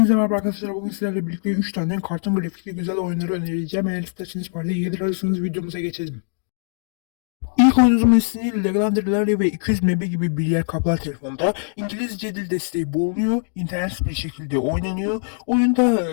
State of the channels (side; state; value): right; silent; digital silence